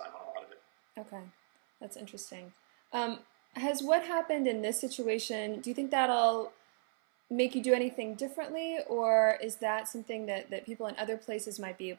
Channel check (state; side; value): silent; left; 55 dB below the other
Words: on a lot of it. Okay, that's interesting. Has what happened in this situation, do you think that'll make you do anything differently, or is that something that people in other places might be